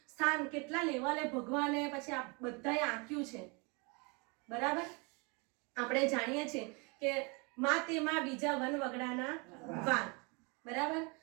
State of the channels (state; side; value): quieter; left; 30.6 dB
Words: સ્થાન કેટલા લેવલે ભગવાને પછી આ બધાએ આંક્યું છે. બરાબર. આપણે જાણીએ છીએ કે માં તેમાં બીજા વન વગડાના વાન. બરાબર.